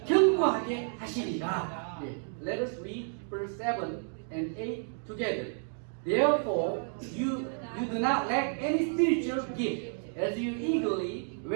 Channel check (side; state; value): left; silent; 57 dB below the other